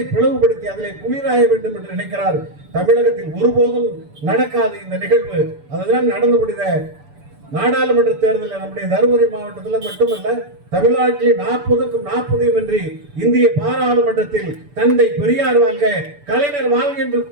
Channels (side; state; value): left; late; 6.9 ms